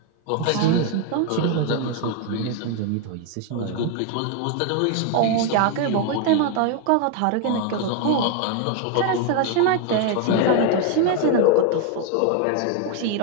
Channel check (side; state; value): both; different; correlation 0.01